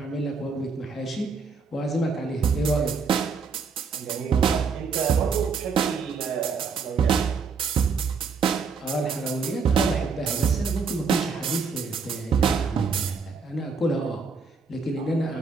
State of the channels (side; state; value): left; quieter; 5.1 dB